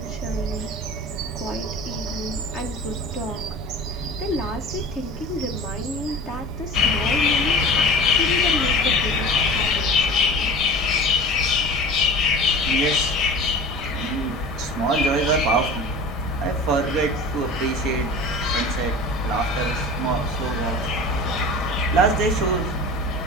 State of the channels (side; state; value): both; normal; correlation 0.36